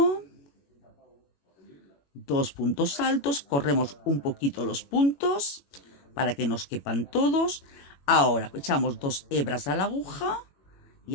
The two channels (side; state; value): right; late; 21 ms